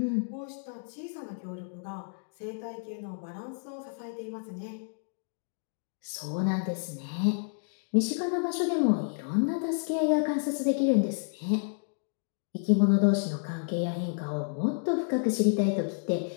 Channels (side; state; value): right; silent; digital silence